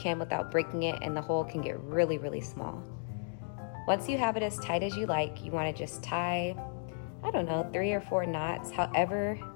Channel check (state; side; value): silent; right; digital silence